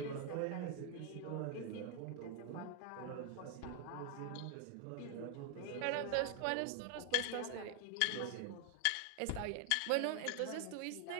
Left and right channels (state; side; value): different; both; correlation 0.00